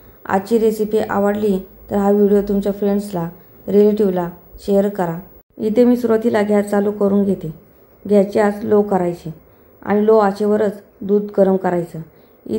आजची रेसिपी आवडली तर हा व्हिडिओ तुमच्या फ्रेंड्सला, रिलेटिव्हला शेअर करा. इथे मी सुरुवातीला गॅस चालू करून घेते. गॅसची आच लो करायची आणि लो आचेवरच दूध गरम करायचं.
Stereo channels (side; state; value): both; identical; correlation 1.00